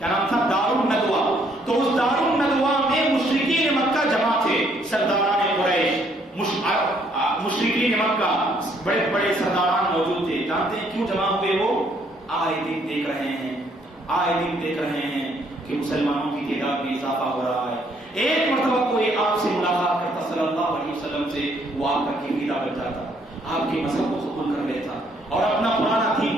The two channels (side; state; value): both; normal; correlation 0.67